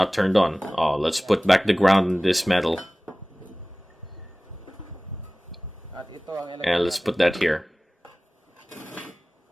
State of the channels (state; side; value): normal; both; correlation 0.98